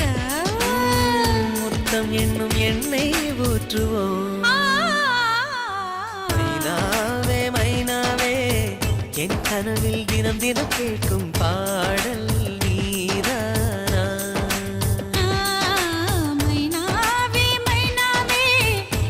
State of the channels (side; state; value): both; identical; correlation 1.00